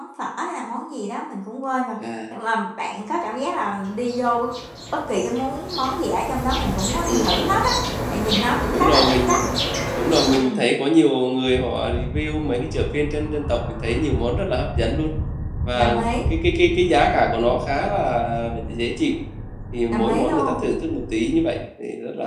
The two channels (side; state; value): both; identical; correlation 1.00